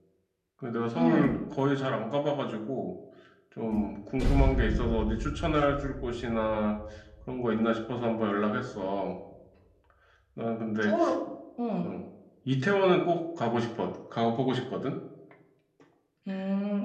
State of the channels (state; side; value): identical; both; correlation 1.00